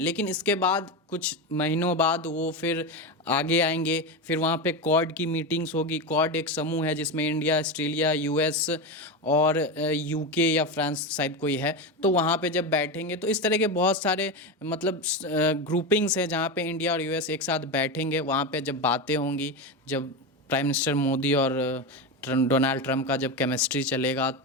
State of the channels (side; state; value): both; normal; correlation 0.17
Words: लेकिन इसके बाद कुछ महीनों बाद वो फिर आगे आएंगे, फिर वहाँ पे क्वाड की मीटिंग्स होगी। क्वाड एक समूह है जिसमें इंडिया, ऑस्ट्रेलिया, यूएस और यूके या फ्रांस शायद कोई है। तो वहाँ पे जब बैठेंगे तो इस तरह के बहुत सारे मतलब ग्रुपिंग्स हैं जहाँ पे इंडिया और यूएस एक साथ बैठेंगे। वहाँ पे जब बातें होंगी, जब प्राइम मिनिस्टर मोदी और डोनाल्ड ट्रम्प का जब केमिस्ट्री चलेगा,